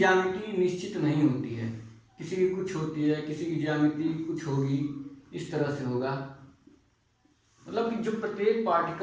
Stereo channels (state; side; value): identical; both; correlation 1.00